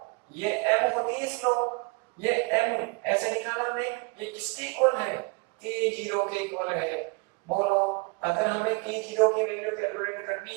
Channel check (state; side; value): quieter; left; 30.3 dB